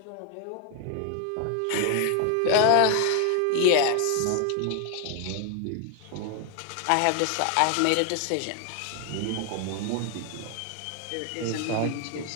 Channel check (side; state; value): both; different; correlation 0.01